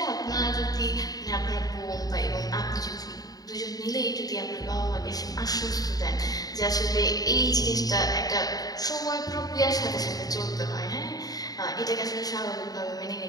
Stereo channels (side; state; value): right; late; 0.18 ms